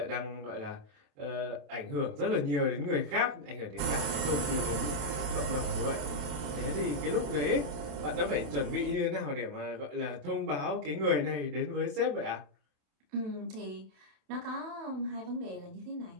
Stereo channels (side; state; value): left; late; 28 ms